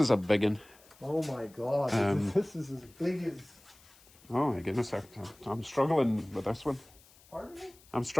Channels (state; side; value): noise; left; hiss, 26 dB below the sound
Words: a big one. Oh my God, this is as big as... Oh my goodness, I'm struggling with this one. Pardon me? I'm